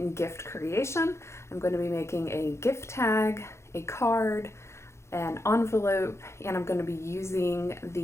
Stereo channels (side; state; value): right; late; 0.13 ms